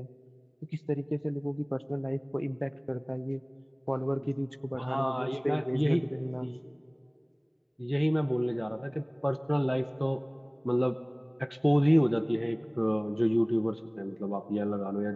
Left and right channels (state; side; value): identical; both; correlation 1.00